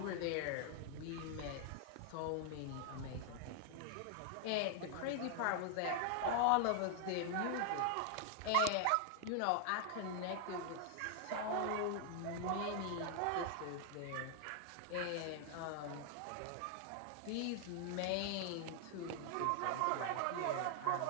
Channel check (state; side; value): different; both; correlation 0.00